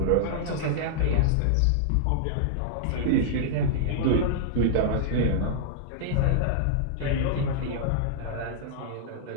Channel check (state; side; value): different; both; correlation -0.01